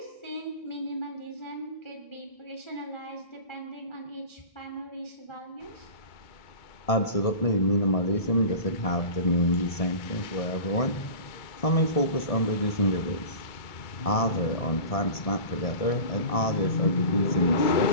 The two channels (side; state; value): right; late; 1.7 ms